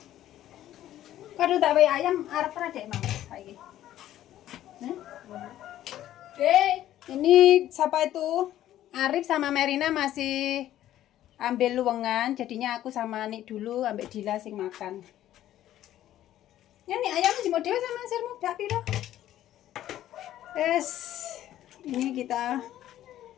Kado tak wae ayam arep ra dek Mang saiki. Ini siapa itu? Arif sama Merina masih ambil luwengan, jadinya aku sama Nik dulu ambil Dila sing makan. Ya nih ayam jemur dhewe sama sirmu dak piro? Ini kita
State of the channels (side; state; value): right; quieter; 12.8 dB